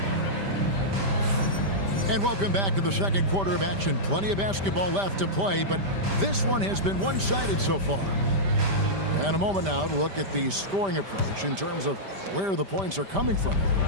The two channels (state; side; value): late; left; 5.1 ms